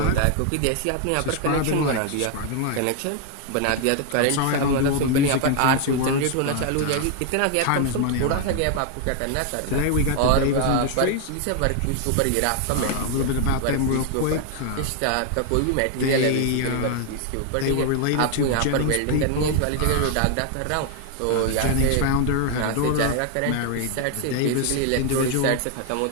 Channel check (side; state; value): both; different; correlation 0.00